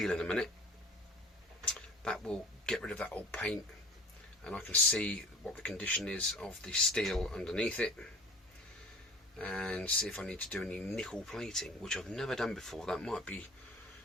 in a minute, that will get rid of that old paint, and I can see what the condition is of the steel underneath it, and see if I need to do any nickel plating, which I've never done before. That might be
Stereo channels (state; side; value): normal; both; correlation 0.44